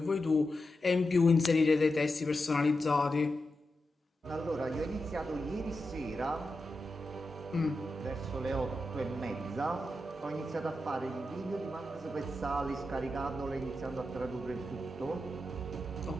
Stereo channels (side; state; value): both; normal; correlation 0.89